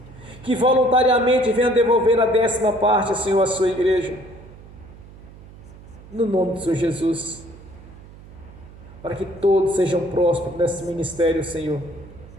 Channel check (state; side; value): noise; right; hum, 19 dB below the sound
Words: Que voluntariamente venha devolver a 10ª parte, Senhor, à sua igreja. No nome do Senhor Jesus. Para que todos sejam prósperos nesse ministério, Senhor.